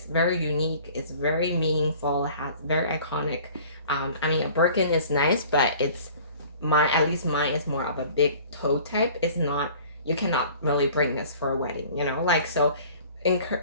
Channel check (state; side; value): inverted; both; correlation -0.47